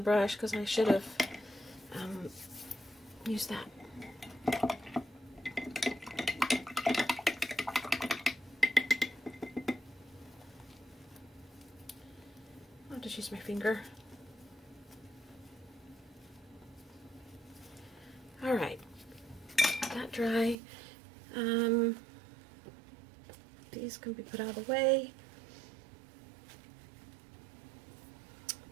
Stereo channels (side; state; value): left; drops out; at 20.6 s